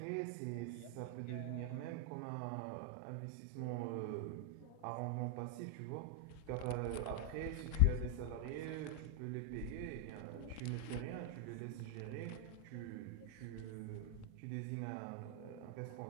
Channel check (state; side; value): different; both; correlation 0.00